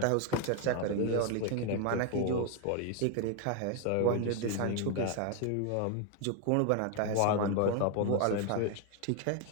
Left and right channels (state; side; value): different; both; correlation 0.01